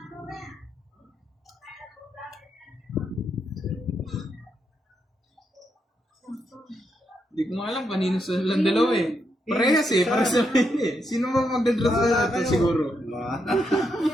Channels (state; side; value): normal; both; correlation 0.81